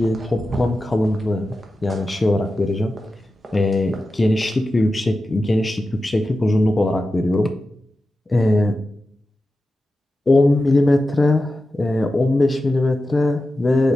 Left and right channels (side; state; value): both; normal; correlation 0.92